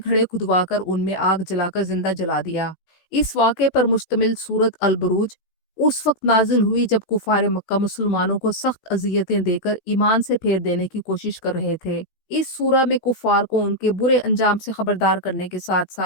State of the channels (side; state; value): right; late; 16 ms